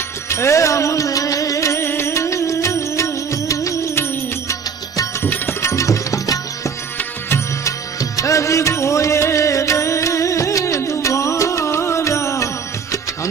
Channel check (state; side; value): quieter; left; 6.1 dB